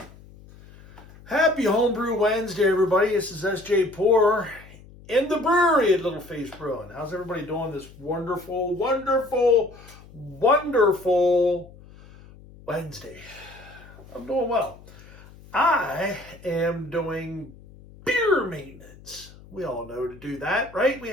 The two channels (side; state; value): left; noise; hum, 21 dB below the sound